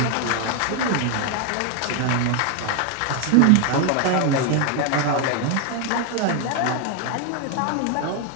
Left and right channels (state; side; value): different; both; correlation 0.01